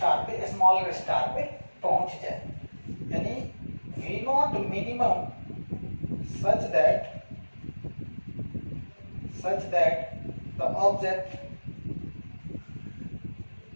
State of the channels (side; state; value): both; inverted; correlation -1.00